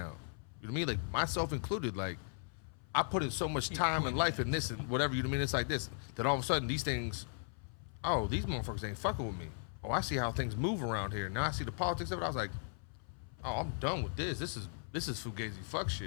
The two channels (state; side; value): silent; right; 53 dB below the other